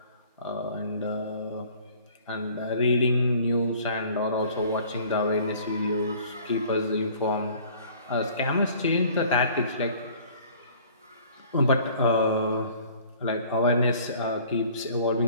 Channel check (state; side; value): inverted; both; correlation -0.52